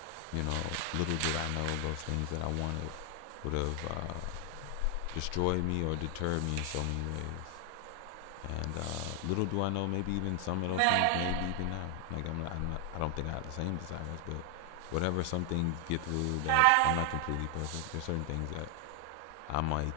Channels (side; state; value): both; different; correlation 0.00